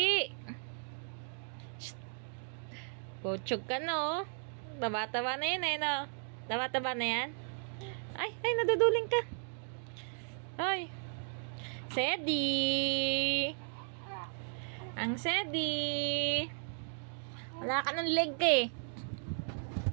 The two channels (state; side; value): silent; left; 54 dB below the other